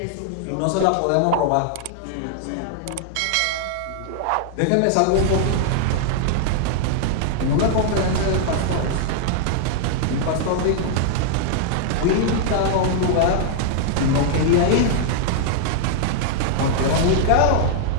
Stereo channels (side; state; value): both; different; correlation -0.01